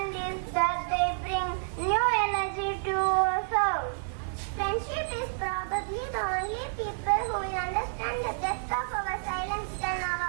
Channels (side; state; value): left; silent; 58 dB below the other